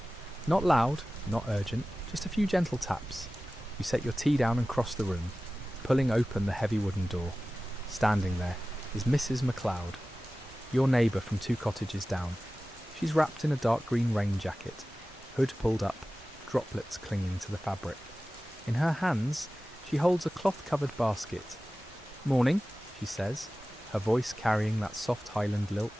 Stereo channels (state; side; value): normal; both; correlation 0.96